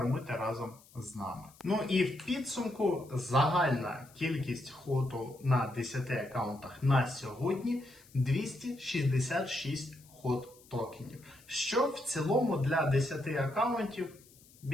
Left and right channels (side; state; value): left; noise; hiss, 26 dB below the sound